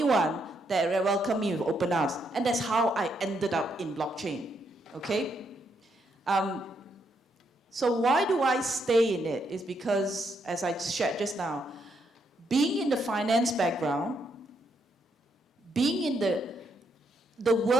one that welcomed me with open arms, and that's how I ended up in blockchain. Okay. So why do I stay in it? Is because, as I shared just now, being in the finance background, being in the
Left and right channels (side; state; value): both; normal; correlation 0.77